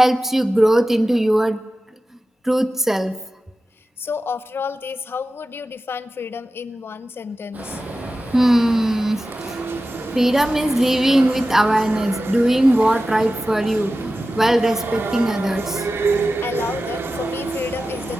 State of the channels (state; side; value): normal; both; correlation 0.94